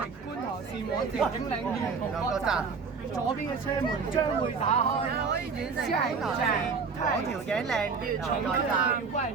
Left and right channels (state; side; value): quieter; left; 5.2 dB